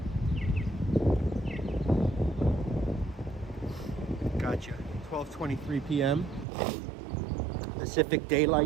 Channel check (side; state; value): left; drops out; at 6.5 s